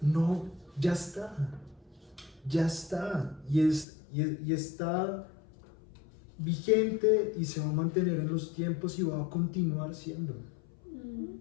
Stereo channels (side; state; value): right; drops out; at 3.9 s